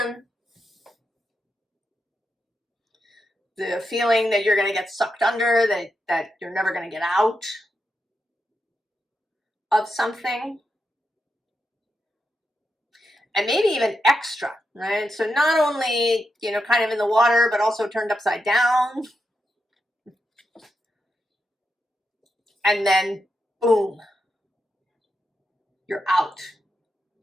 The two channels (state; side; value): normal; both; correlation 0.86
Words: The feeling that you're going to get sucked under, that you're never going to get out of something. And maybe even extra, right? So not only, kind of in the water, but also turned upside down. And then, boom, you're out.